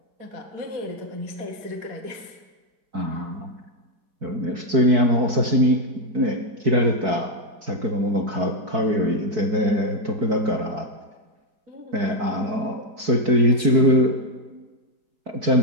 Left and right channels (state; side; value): late; left; 4.6 ms